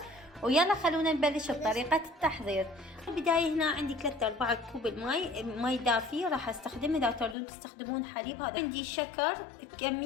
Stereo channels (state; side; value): drops out; right; at 7.4 s